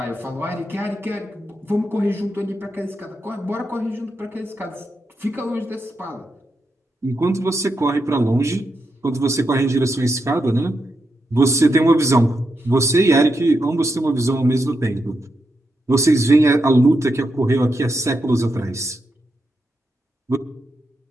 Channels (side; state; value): both; normal; correlation 0.84